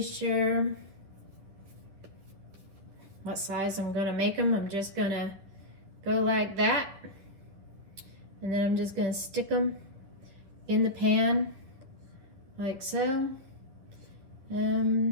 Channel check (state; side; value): late; left; 10 ms